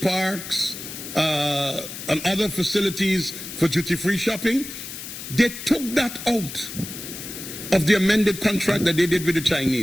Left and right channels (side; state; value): left; noise; hiss, 10 dB below the sound